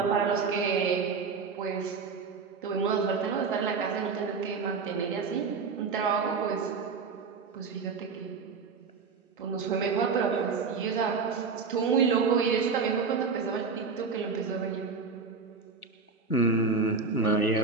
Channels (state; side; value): quieter; left; 5.0 dB